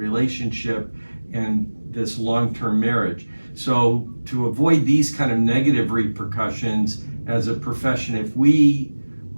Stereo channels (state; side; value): inverted; both; correlation -1.00